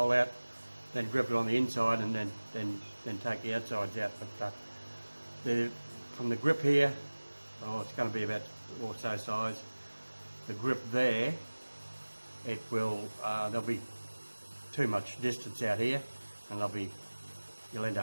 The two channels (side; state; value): both; inverted; correlation -1.00